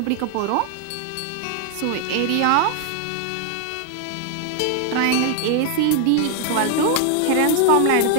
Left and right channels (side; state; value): both; different; correlation 0.00